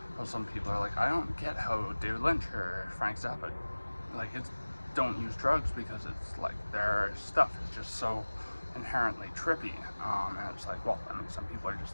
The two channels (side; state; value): both; inverted; correlation -1.00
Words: some people are I don't get how David Lynch or Frank Zappa don't use drugs, because it's their stuff is just so inherently trippy, and it's well, I mean, some people are just